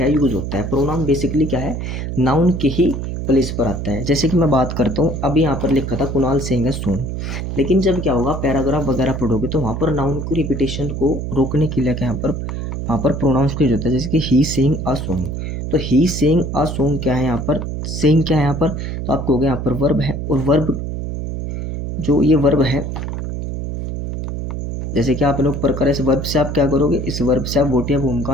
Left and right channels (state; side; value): noise; right; hum, 4 dB below the sound